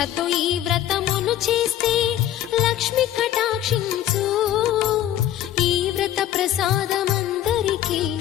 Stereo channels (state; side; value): quieter; right; 12.0 dB